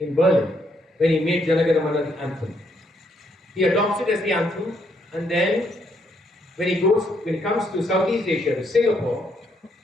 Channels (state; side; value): normal; both; correlation 0.73